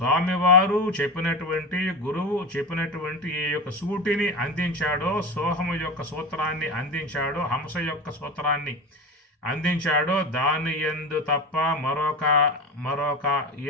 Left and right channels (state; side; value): normal; both; correlation 0.25